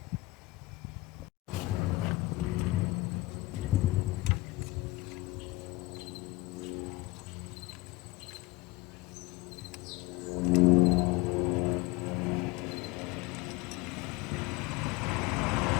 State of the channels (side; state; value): right; quieter; 21.2 dB